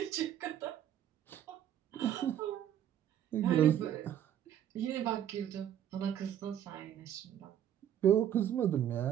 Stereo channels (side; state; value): left; quieter; 10.5 dB